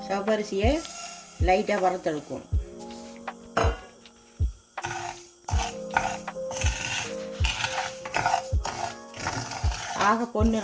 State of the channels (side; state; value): both; identical; correlation 1.00